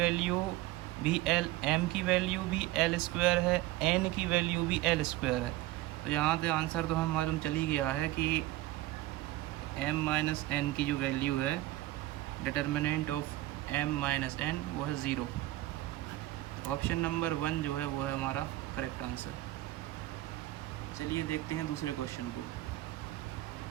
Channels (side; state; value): left; quieter; 16.8 dB